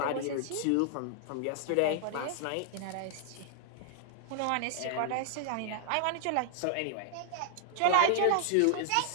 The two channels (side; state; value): both; different; correlation -0.01